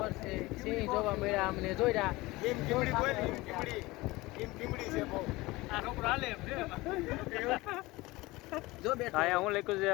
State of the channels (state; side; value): quieter; right; 20.8 dB